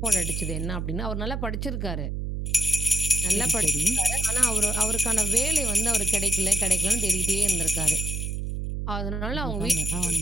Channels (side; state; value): right; noise; hum, 3 dB below the sound